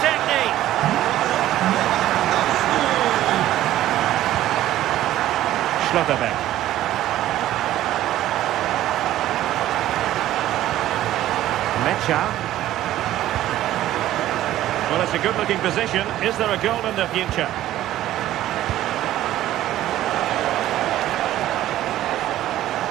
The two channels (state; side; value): quieter; left; 13.7 dB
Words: Schlotterbeck. Mecha. Well, it's a good-looking position. Is there a goal in the future?